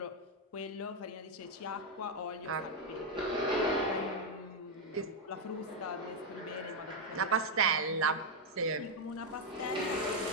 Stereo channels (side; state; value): both; normal; correlation 0.02